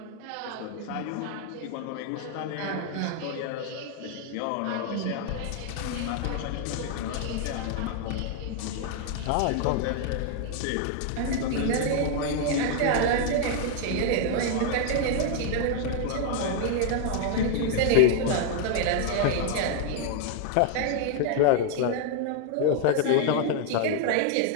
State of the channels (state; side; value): different; both; correlation 0.00